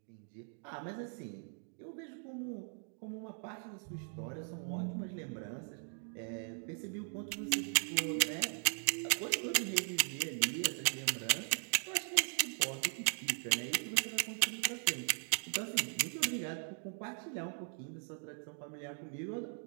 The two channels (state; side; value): silent; left; 52 dB below the other